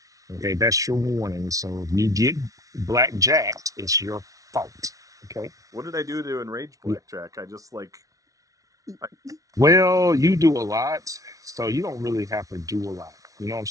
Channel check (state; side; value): late; left; 0.17 ms